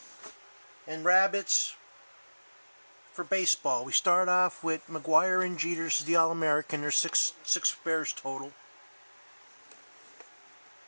and rabbits for baseball. We start off with McGuire and Jeter. This is the All-American. There's six bears total.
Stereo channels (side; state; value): both; inverted; correlation -1.00